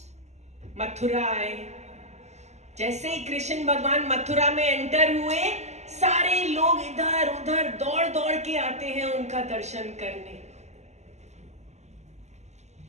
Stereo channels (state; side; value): late; left; 0.33 ms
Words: मथुरा आए। जैसे ही कृष्ण भगवान मथुरा में एंटर हुए, सारे लोग इधर उधर दौड़ दौड़ के आते हैं उनका दर्शन करने।